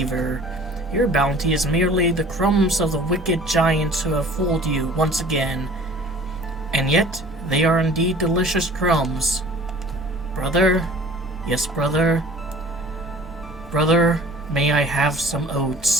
Your bounty is merely the crumbs of the wicked giants who have fooled you once again. And yet, they are indeed delicious crumbs. Brother, yes, brother, Brother, may I have some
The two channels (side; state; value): both; normal; correlation 0.47